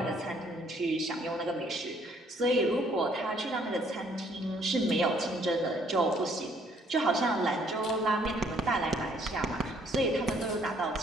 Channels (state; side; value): normal; both; correlation 0.64